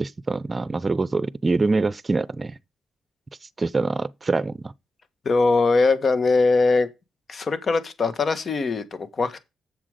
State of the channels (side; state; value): both; normal; correlation 0.91